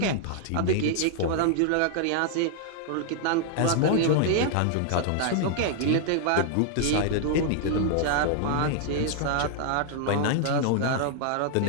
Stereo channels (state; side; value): different; both; correlation 0.00